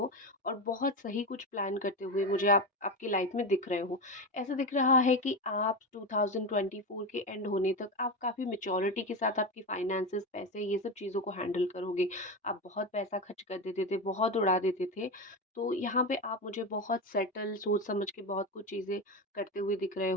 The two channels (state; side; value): normal; both; correlation 0.17